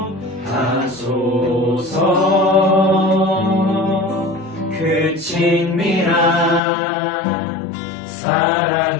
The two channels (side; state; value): right; drops out; at 6.6 s